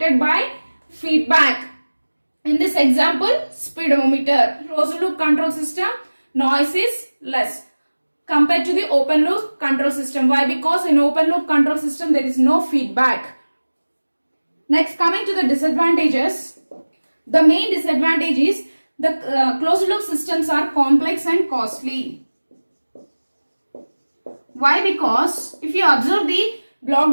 by feedback. In this example, speedometer, closed loop control system, noise is less compared to the open loop control system. Why? Because in open loop control system there is no feedback. Next, coming to the disadvantages. The main disadvantage is the closed loop systems are complex and costly. Why? Because if you observe the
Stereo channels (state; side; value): inverted; both; correlation -1.00